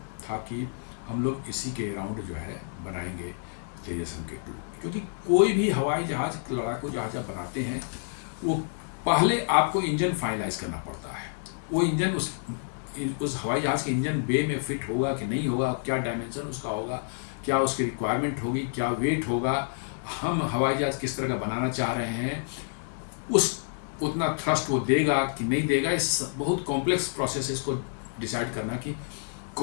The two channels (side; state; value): right; silent; digital silence